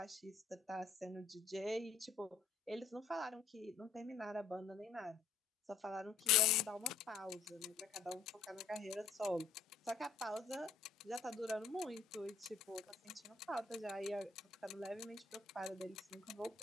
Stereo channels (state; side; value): quieter; right; 5.0 dB